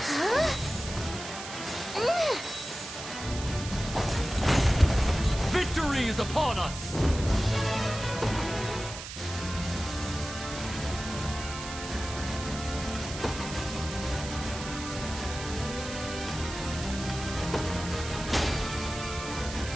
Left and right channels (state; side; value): noise; right; hiss, 10 dB below the sound